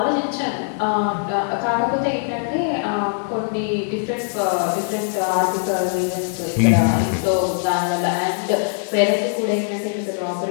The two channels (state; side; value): silent; right; 65 dB below the other